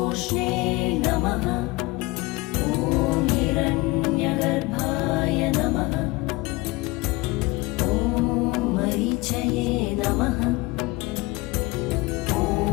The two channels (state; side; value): quieter; right; 22.3 dB